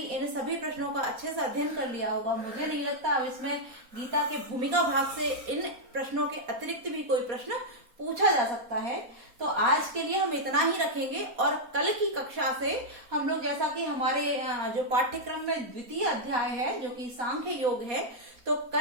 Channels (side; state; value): left; late; 4.2 ms